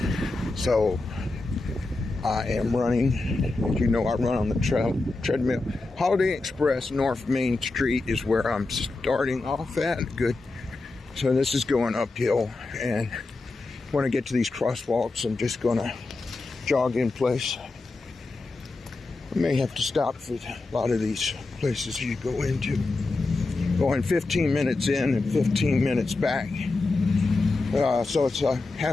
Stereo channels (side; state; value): right; quieter; 3.4 dB